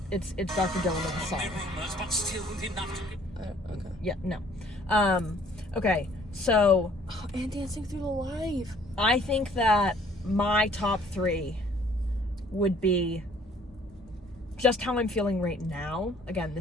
Dr. Dylan with the song. Okay. Yeah, no. Okay, so Oh, and Dancing Through the Life. I think that my top 3 would be just how I'm feeling right now. Again,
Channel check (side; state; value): both; normal; correlation 0.58